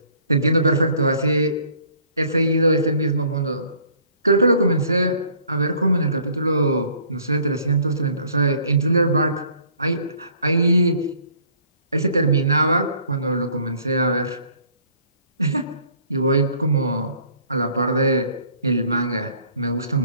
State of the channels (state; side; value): inverted; both; correlation -0.59